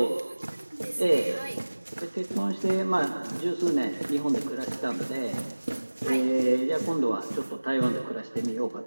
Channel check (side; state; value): both; inverted; correlation -1.00